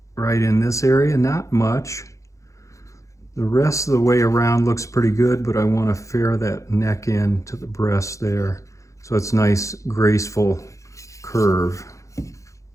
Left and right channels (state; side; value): late; right; 0.15 ms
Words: right in this area, not much. The rest of the way around looks pretty good, but I want to fair that neck in to the breast there so it's nice, graceful curve.